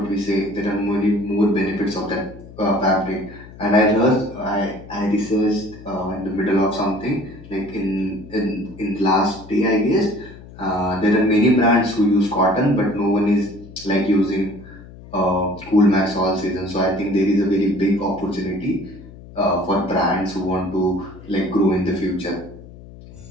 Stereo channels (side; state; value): left; noise; hum, 18 dB below the sound